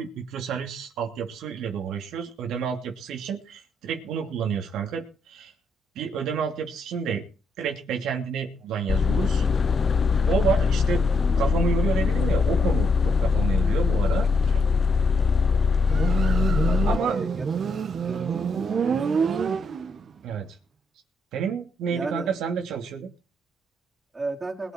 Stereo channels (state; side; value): normal; both; correlation 0.76